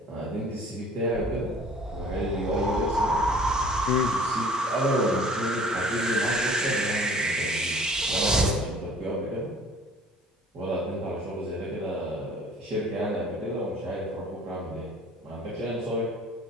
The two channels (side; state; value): both; normal; correlation 0.50